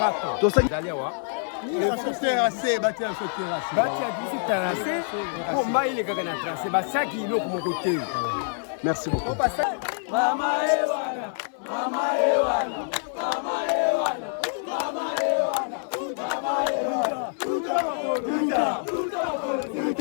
vous allez voir. Il faut terrasser, bâtir un terrasse. Bâtir un terrassé. Pour moi, il est quelqu'un à tracé. Bah, ça qui est là, mon côté. Merci beaucoup. Mama Ewana, Mama Ewana, Mama Ewana, Mama Ewana, Mama Ewana,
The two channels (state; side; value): silent; right; 57 dB below the other